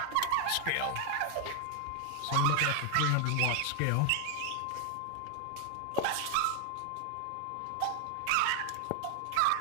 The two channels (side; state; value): both; different; correlation 0.00